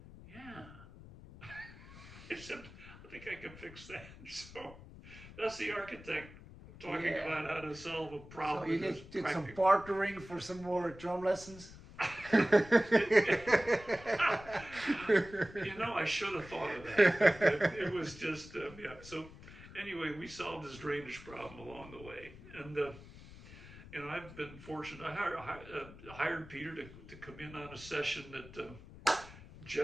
yeah. I said, I think I can fix that. So that's the architect talking about how to solve a problem. So you did some bartering for some more drum lessons? You know, I should have thought of that. It was just, yeah. So anyway, we solved his drainage problem along the way. And I've been fortunate. I hired Peter to come in on a session that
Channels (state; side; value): noise; left; rumble, 17 dB below the sound